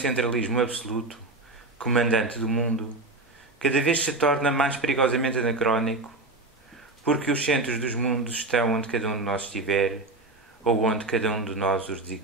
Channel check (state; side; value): quieter; left; 3.1 dB